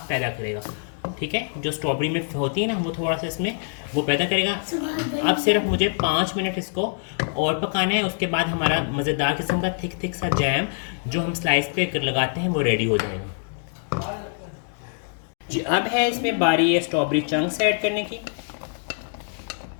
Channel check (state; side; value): silent; right; 62 dB below the other